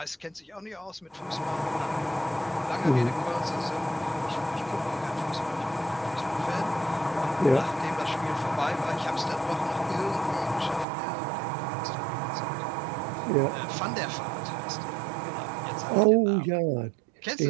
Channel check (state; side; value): drops out; left; at 10.9 s